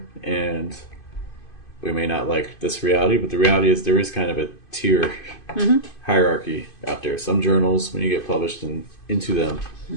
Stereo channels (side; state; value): right; late; 2.5 ms